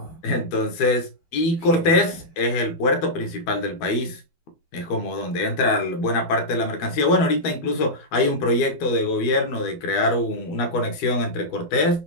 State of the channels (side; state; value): right; late; 12 ms